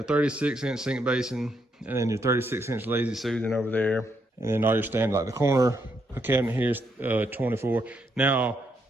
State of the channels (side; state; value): both; normal; correlation 0.77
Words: 36-inch sink basin, and then your 36-inch lazy Susan over there. And then all your standard, like the corner the cabinet here is 24. Now,